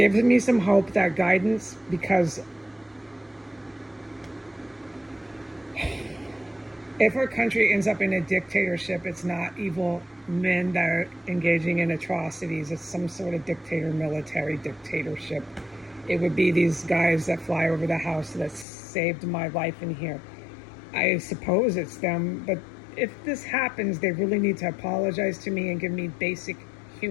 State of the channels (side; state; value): right; drops out; at 18.7 s